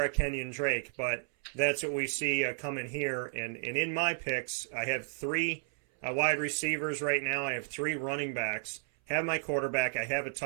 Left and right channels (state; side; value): silent; left; 56 dB below the other